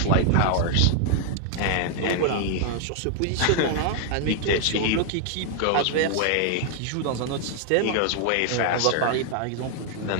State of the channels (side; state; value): both; different; correlation 0.00